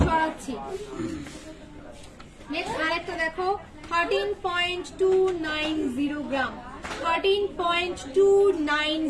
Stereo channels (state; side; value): identical; both; correlation 1.00